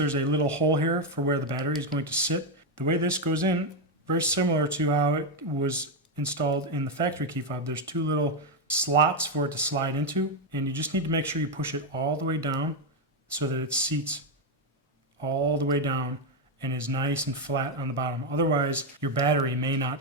a little hole here for where the battery is going to sit. The way this goes in, very similar to how it was installed in the factory key fob. There's 2 little slots for it to slide into, and you just need to make sure you push it all the way down so that it seats all the way down and is nice and flat on the bottom. Otherwise, your battery may not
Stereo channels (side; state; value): both; normal; correlation 0.04